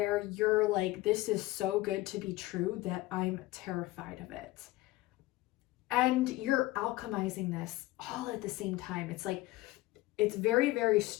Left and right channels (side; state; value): right; quieter; 18.5 dB